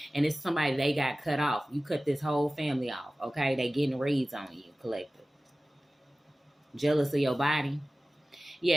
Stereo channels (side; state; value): both; normal; correlation 0.97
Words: and it's somebody they got cut off. You cut this whole family off, okay? They getting reads on you, collective. Jealous of your body.